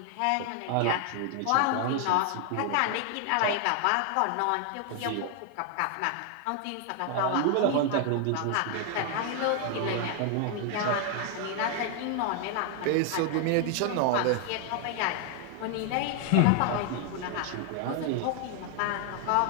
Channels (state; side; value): different; both; correlation 0.00